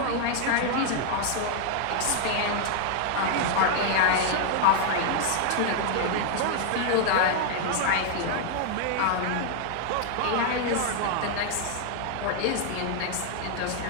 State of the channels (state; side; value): different; both; correlation 0.00